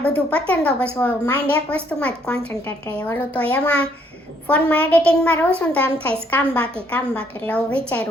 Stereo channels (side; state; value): both; normal; correlation 0.67